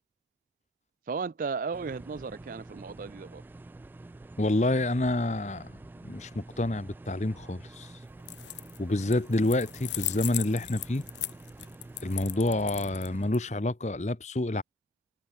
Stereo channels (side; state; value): both; normal; correlation 0.58